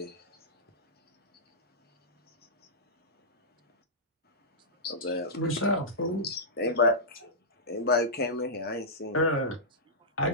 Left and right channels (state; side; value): normal; both; correlation -0.15